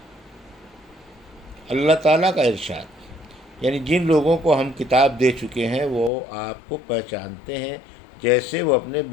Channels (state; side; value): drops out; right; at 6.1 s